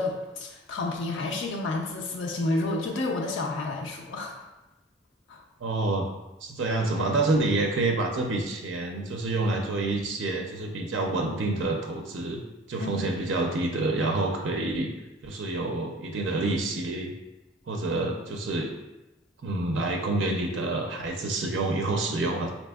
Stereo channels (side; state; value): both; normal; correlation 0.42